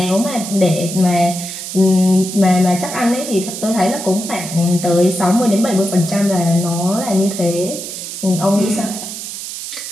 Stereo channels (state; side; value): noise; right; hiss, 8 dB below the sound